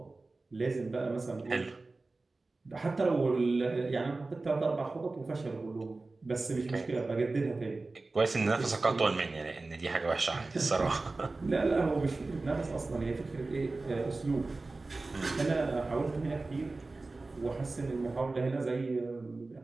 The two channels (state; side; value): quieter; left; 3.4 dB